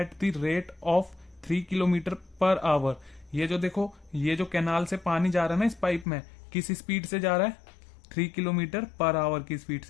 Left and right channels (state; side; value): drops out; right; at 6.1 s